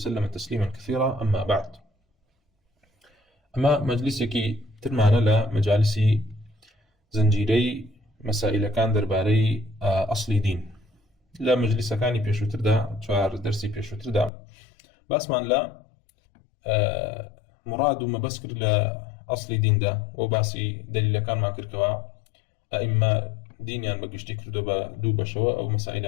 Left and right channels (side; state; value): right; drops out; at 14.3 s